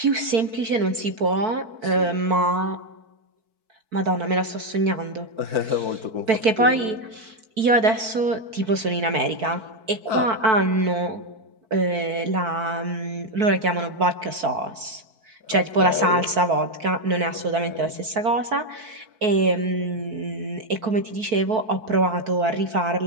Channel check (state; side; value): late; left; 4.6 ms